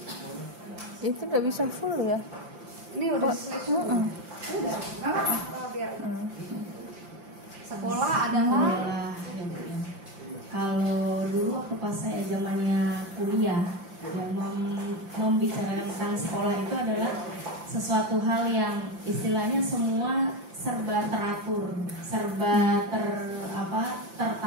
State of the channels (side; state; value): left; late; 5.8 ms